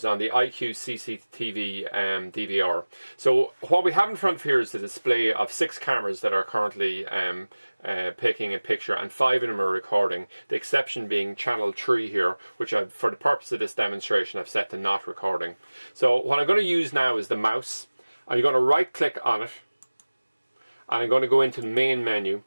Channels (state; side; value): inverted; both; correlation -1.00